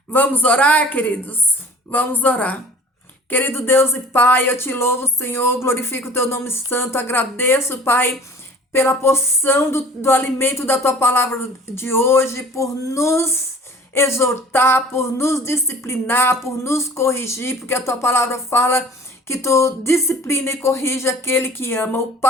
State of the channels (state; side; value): normal; both; correlation 0.46